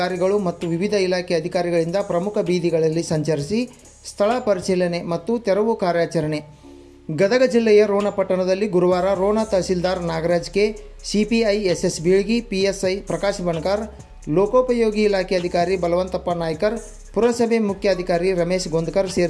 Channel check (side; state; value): both; identical; correlation 1.00